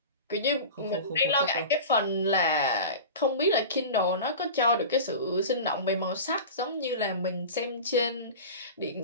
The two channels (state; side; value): inverted; both; correlation -0.32